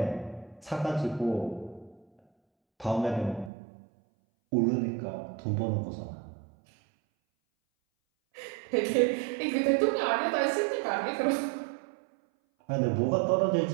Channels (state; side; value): drops out; left; at 3.5 s